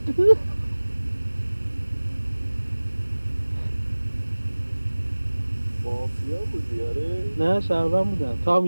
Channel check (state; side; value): inverted; both; correlation -1.00